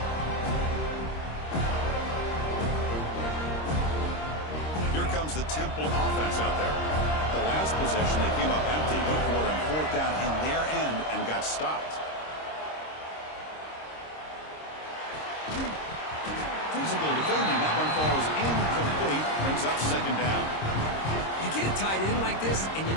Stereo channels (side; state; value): right; late; 26 ms